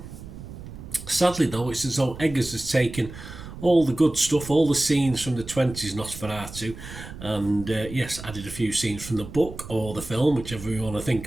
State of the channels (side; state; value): right; noise; rumble, 13 dB below the sound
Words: Sadly though, it's as though Eggers has taken all the good stuff, all the scenes from the 20s Nosferatu, and added a few scenes from the book or the film, whichever you want to think